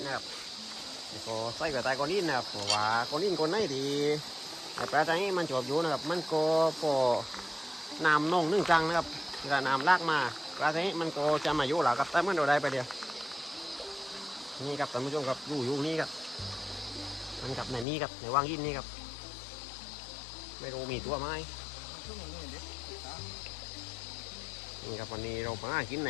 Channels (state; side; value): drops out; right; at 17.9 s